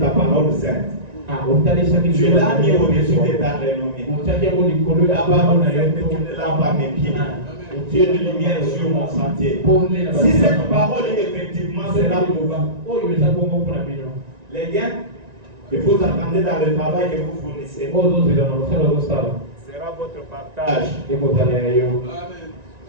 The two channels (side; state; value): left; late; 1.9 ms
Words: parole sainte. Tu l'as mis au-dessus de ta renommée. La parole sainte est une lampe à mes pieds. Tu es une lumière sur mon sentier. Si cette parole effectivement sera pour vous, les gains que vous entendez dans le travail que vous fournissez sera votre partage.